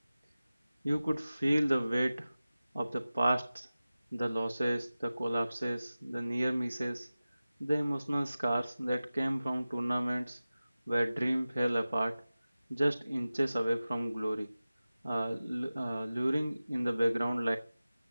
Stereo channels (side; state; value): both; inverted; correlation -0.96